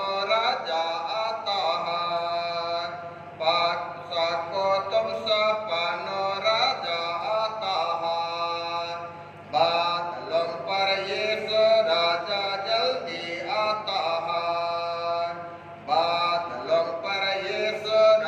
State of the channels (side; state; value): both; identical; correlation 1.00